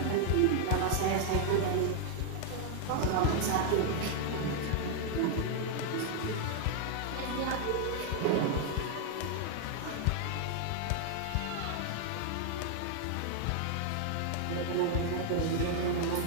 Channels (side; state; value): both; different; correlation 0.00